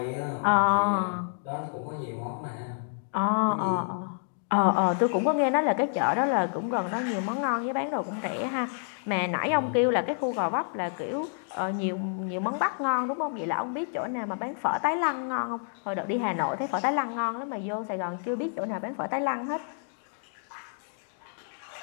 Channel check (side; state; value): right; silent; digital silence